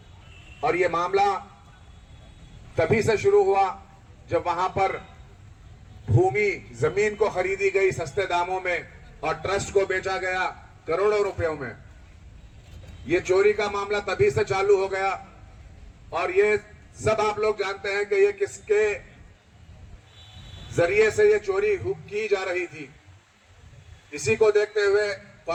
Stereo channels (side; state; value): both; identical; correlation 1.00